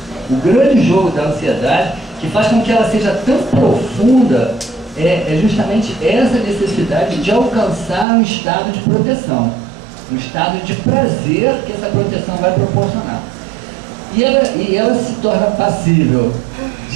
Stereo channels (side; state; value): left; drops out; at 8.1 s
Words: O grande jogo da ansiedade que faz com que ela seja tão profunda é justamente essa necessidade de alcançar um estado de proteção. Um estado de prazer que essa proteção vai proporcionar. E ela se torna passível